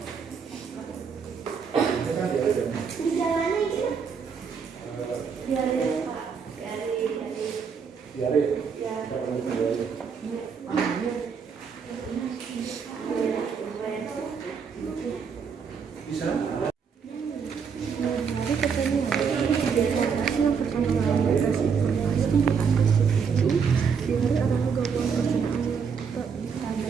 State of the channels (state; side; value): quieter; left; 6.2 dB